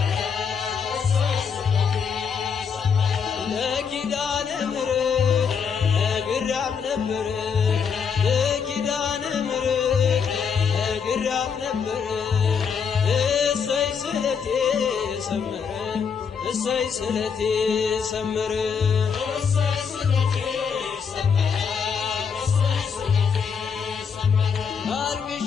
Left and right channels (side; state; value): right; quieter; 6.5 dB